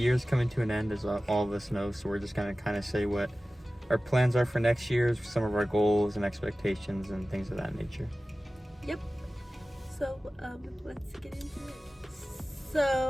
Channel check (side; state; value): both; normal; correlation 0.96